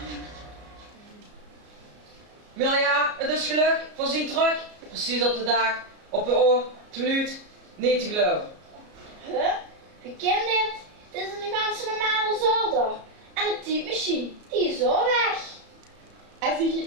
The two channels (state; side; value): late; left; 33 ms